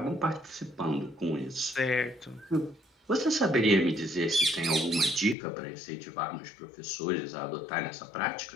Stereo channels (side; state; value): right; drops out; at 5.4 s